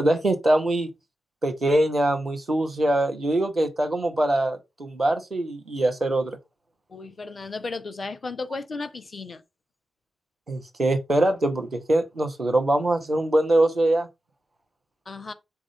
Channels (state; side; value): normal; both; correlation 0.91